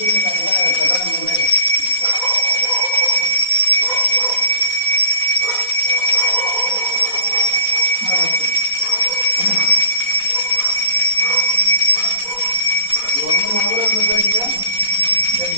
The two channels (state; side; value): late; right; 4.1 ms